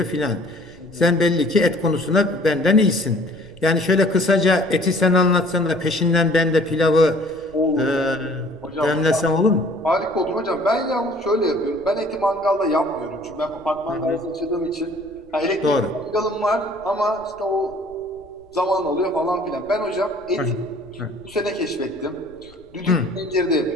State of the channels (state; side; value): noise; left; rumble, 27 dB below the sound